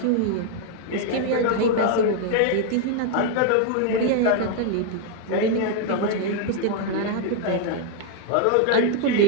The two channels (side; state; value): both; different; correlation 0.00